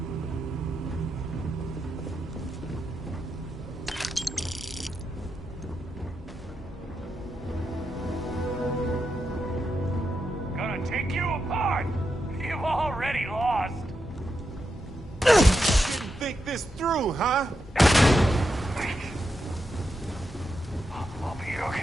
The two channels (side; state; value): both; normal; correlation 0.85